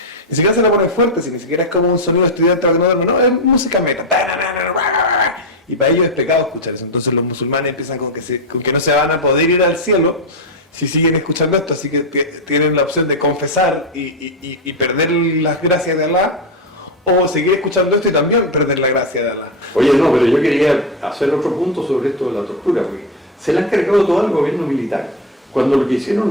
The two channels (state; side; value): normal; both; correlation 0.09